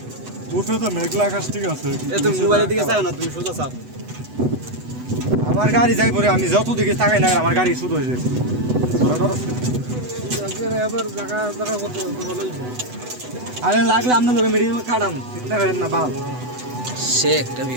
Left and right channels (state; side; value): late; left; 8.0 ms